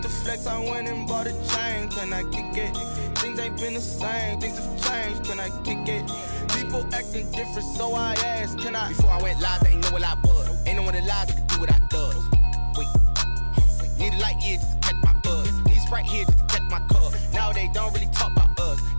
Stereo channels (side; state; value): both; inverted; correlation -1.00